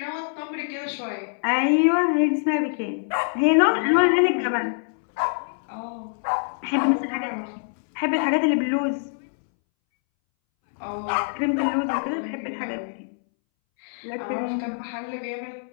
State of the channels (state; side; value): silent; right; 62 dB below the other